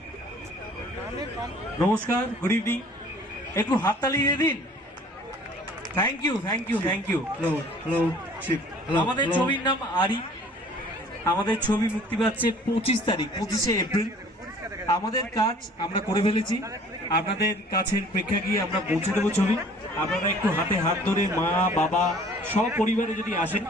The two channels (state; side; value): normal; both; correlation 0.52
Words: নমস্কার, গুড ইভিনিং। একটু হাততালি দিয়ে দিন। Thank you, thank you, thank you. Hello hello Shiv. আমাদের ছবির নাম আরি। আমাদের ছবি মুক্তি পাচ্ছে 25 তারিখ, 25শে এপ্রিল। আমাদের কাজ আমরা করে ফেলেছি, আপনাদের কাছের প্রেক্ষাগৃহে আমরা পৌঁছে দেবো ছবি। আপনারা একটু হাতে হাত ধরে মা বাবা সব পরিবারে যদি আসেন,